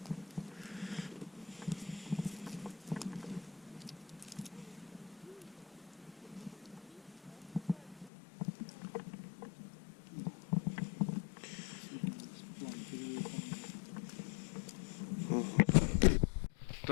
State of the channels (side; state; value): right; drops out; at 8.1 s